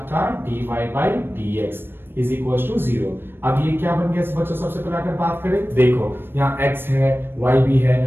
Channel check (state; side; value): late; left; 0.10 ms